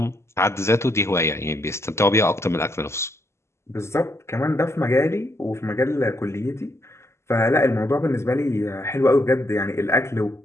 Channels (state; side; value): late; right; 0.13 ms